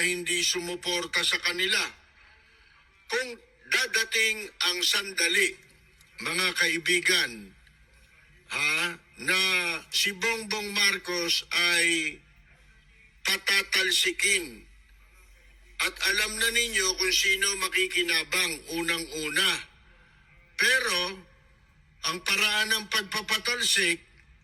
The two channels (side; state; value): both; identical; correlation 1.00